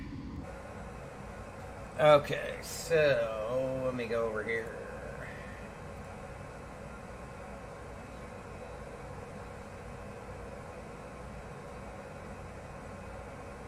Okay, so let me go over here.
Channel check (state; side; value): identical; both; correlation 1.00